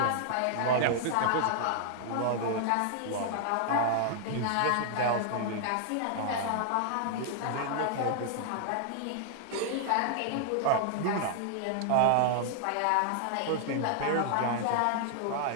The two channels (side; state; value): both; different; correlation 0.00